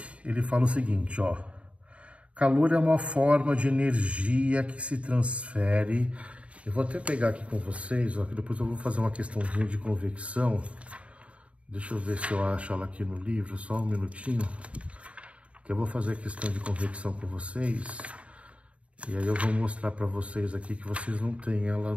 ele fala o seguinte, ó. Calor é uma forma de energia que se transfere. Eu vou até pegar aqui com vocês, ó, que depois eu vou fazer uma questãozinha de convecção. Deixa eu ver se eu acho ela aqui no livro, só um minutinho. Que eu vou fazer a questão de convecção com vocês. E aí eu vou mostrar para vocês aqui que vocês não têm ela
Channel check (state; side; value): late; left; 0.063 ms